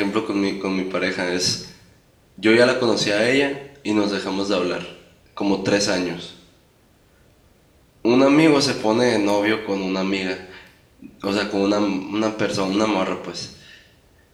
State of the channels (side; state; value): both; identical; correlation 1.00